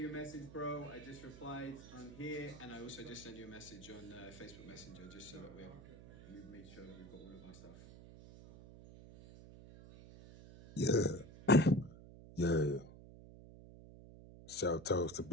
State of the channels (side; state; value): right; noise; hum, 16 dB below the sound